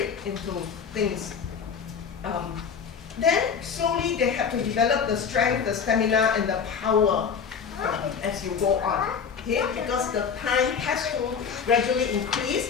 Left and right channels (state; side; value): quieter; right; 6.5 dB